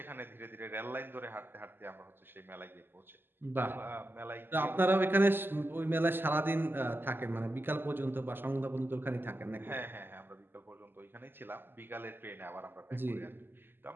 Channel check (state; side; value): late; left; 0.098 ms